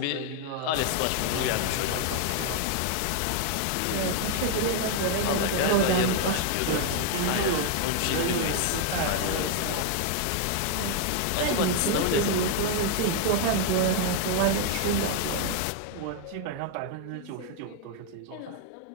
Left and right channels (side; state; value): both; different; correlation 0.00